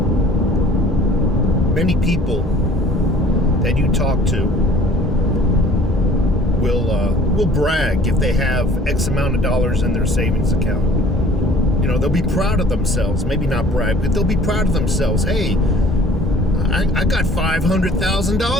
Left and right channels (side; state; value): both; normal; correlation 0.51